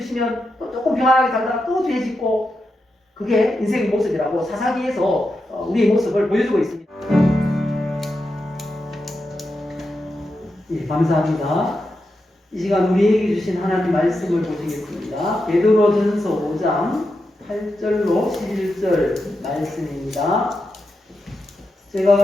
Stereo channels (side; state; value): both; normal; correlation 0.87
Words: 주시면 또 조금 평안하게 살다가 또 죄 짓고 그게 인생의 모습이라고 사사기에서 우리의 모습을 보여주고 있습니다. 예, 감사합니다. 이 시간 우리에게 주신 하나님 말씀을 보시겠습니다. 베드로전서 5장 8절로 11절 말씀입니다. 제가